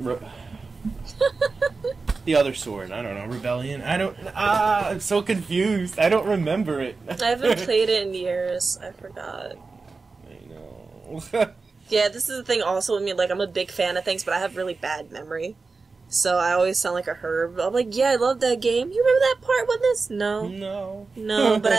the other sword, I don't know, Rebellion? I'm so confused. I don't remember it. I haven't played it in years. I forgot. I know. Yeah, this is the thing also with me, like, I'm a big fan of things, but I have really bad memory. So I always sound like a herb. I'm like, yeah, I love that game. You remember that part with this? No. No,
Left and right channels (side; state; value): left; quieter; 4.2 dB